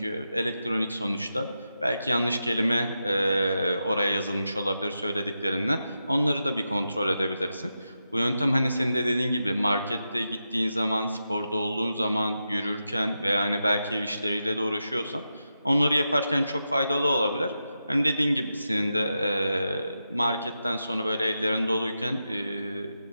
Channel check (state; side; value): inverted; both; correlation -0.88